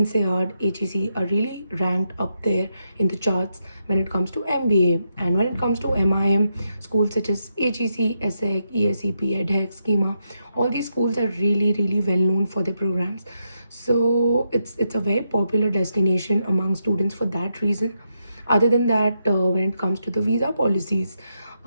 HEC are really ranked up there in the charts when it comes to MBA. And when it comes to MIM, schools such as HEC, ESSEC, ESEP, EDHEC, Schema, all these schools are really, really well known for their programs. So it's a very popular destination among students for that reason. Other than that, when it comes to the visa policies,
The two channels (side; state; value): both; inverted; correlation -0.83